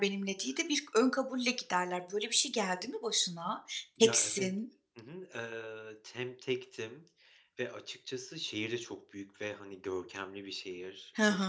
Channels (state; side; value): identical; both; correlation 1.00